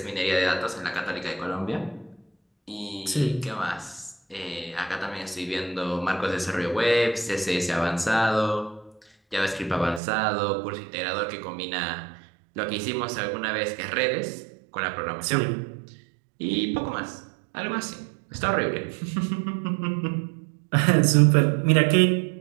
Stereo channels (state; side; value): drops out; left; at 10.0 s